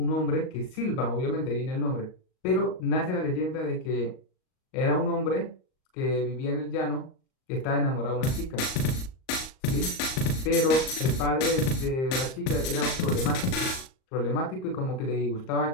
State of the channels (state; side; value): late; right; 38 ms